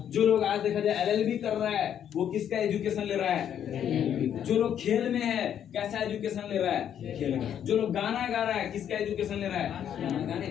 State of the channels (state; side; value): quieter; right; 9.4 dB